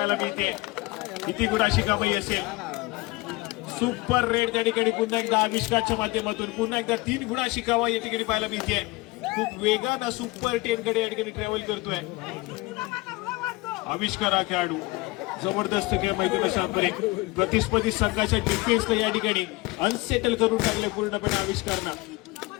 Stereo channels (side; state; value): right; quieter; 22.1 dB